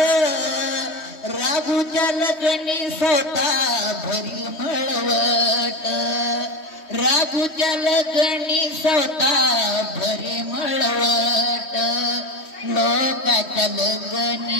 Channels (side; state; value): right; late; 3.1 ms